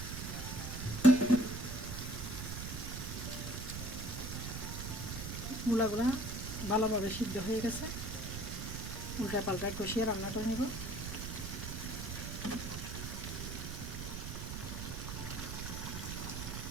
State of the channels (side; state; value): right; noise; rumble, 5 dB below the sound